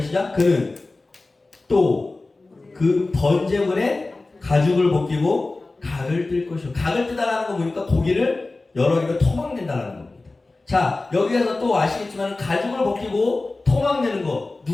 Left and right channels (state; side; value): quieter; right; 3.3 dB